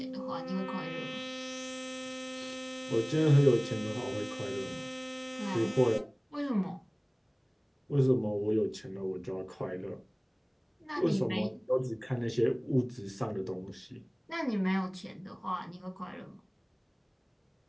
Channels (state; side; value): identical; both; correlation 1.00